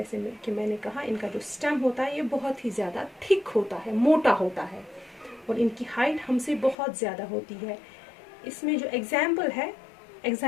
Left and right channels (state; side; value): drops out; right; at 6.8 s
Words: कि मैंने कहा, इनका जो स्टेम होता है ये बहुत ही ज़्यादा थिक होता है, मोटा होता है और इनकी हाइट हमसे बहुत ज़्यादा होती है। इसमें जो एग्जाम्पल है,